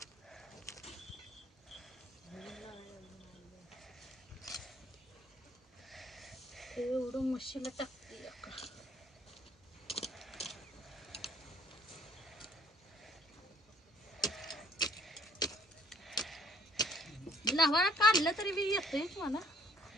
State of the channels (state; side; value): normal; both; correlation 0.60